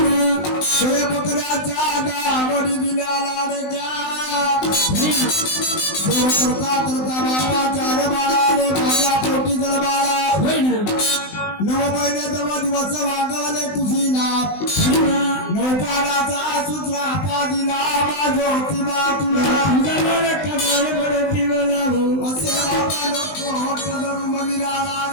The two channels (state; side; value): late; right; 19 ms